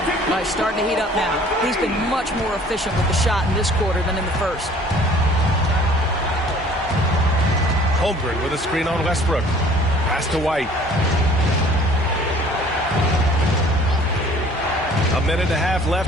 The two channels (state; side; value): normal; both; correlation 0.52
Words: He's starting to heat up now. He's been much more efficient with the shot in this quarter than in the first. Holmgren with a screen on Westbrook. Pass to White. A minute and a half